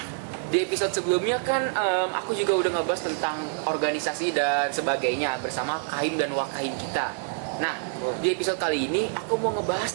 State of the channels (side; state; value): left; silent; digital silence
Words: di episode sebelumnya kan aku juga udah ngebahas tentang organisasi dan sebagainya bersama Kahim dan Wakahim kita. Nah, di episode kali ini aku mau